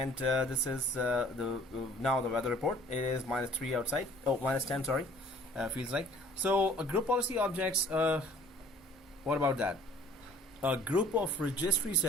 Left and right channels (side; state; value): both; normal; correlation 0.53